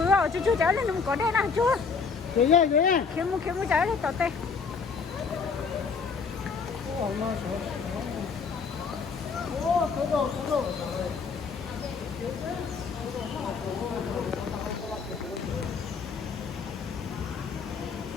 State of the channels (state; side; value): quieter; right; 5.3 dB